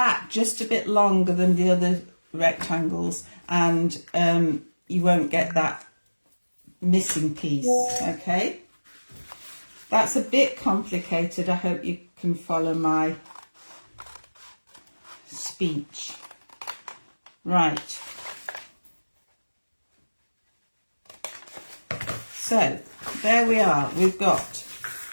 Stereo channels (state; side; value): inverted; both; correlation -1.00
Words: just a bit longer than the other rectangles, and you won't get that missing piece, okay? That's a bit complicated. I hope you can follow my speech. Right. So, there we are. We've got